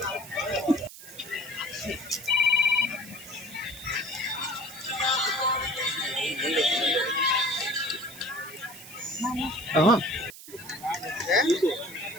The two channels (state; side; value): noise; right; hiss, 15 dB below the sound